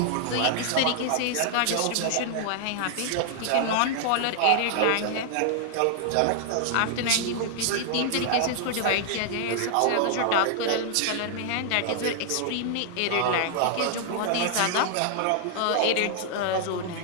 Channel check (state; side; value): different; both; correlation 0.00